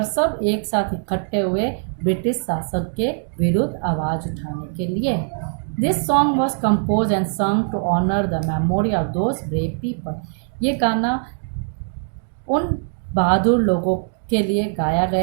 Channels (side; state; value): left; silent; digital silence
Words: सब एक साथ इकट्ठे हुए ब्रिटिश शासक के विरुद्ध आवाज़ उठाने के लिए. This song was compose and sung to honour the memory of those brave people. ये गाना उन बहादुर लोगों के लिए गाया